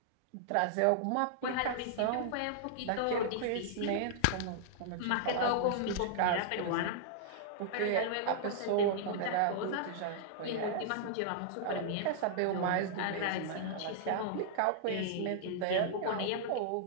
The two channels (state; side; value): different; both; correlation -0.01